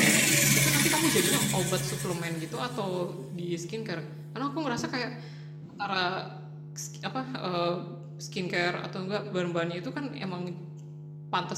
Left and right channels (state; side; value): identical; both; correlation 1.00